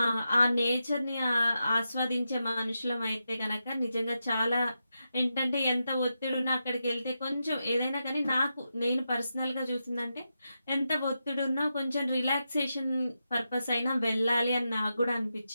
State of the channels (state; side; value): inverted; both; correlation -0.87